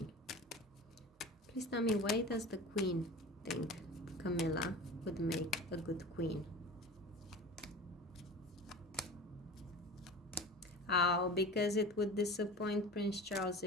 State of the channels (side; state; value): both; normal; correlation 0.35